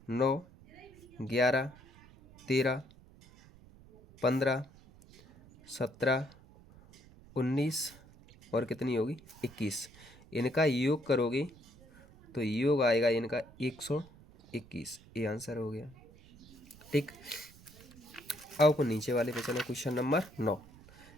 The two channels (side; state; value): right; noise; rumble, 23 dB below the sound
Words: 9 11 13 15 17 19 और कितनी होगी? 21। इनका योग करोगे तो योग आएगा इनका 121। ये आंसर हो गया। ठीक। अब अपन नीचे वाले पे चले, क्वेश्चन नंबर 9।